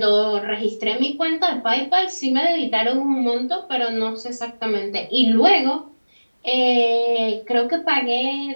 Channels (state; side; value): inverted; both; correlation -1.00